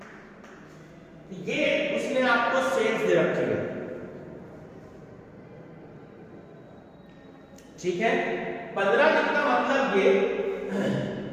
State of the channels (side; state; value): both; identical; correlation 1.00